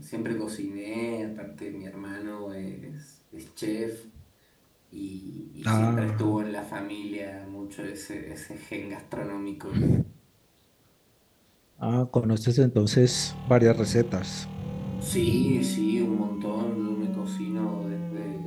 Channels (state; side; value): identical; both; correlation 1.00